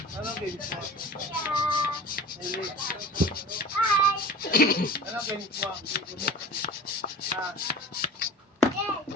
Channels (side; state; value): both; normal; correlation 0.40